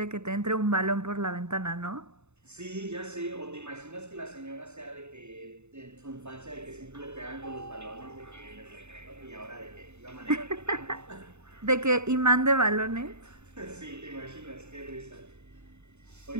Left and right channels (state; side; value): late; left; 0.82 ms